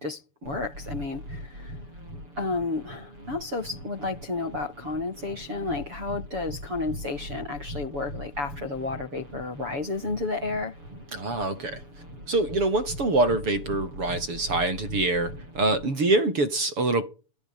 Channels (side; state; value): left; late; 7.0 ms